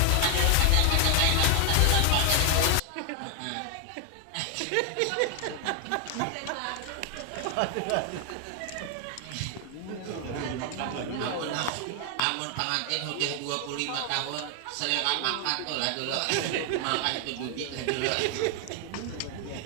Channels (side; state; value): both; different; correlation 0.00